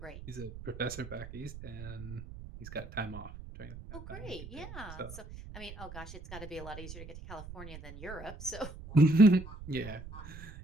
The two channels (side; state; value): right; noise; rumble, 13 dB below the sound